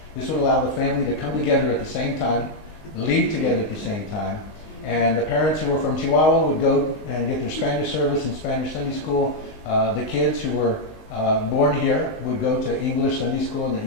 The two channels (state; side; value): late; right; 19 ms